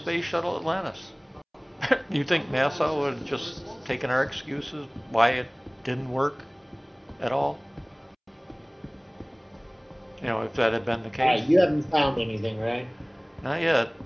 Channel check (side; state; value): both; identical; correlation 1.00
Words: Shuttle Atlantis. You think NASA would have just taken our excuses why it didn't work at all? You know, if that had been the All case. right, you haven't found anything, right? Not yet.